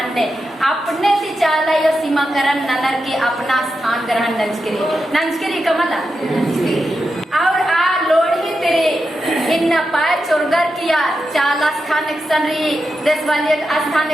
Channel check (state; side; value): normal; both; correlation 0.88